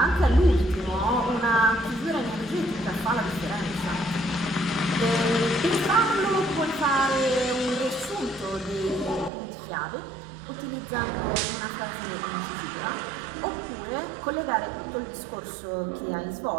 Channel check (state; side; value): drops out; left; at 9.3 s